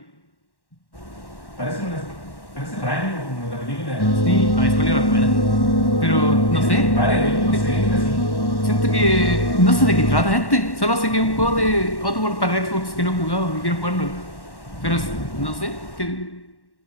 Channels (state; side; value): late; right; 1.1 ms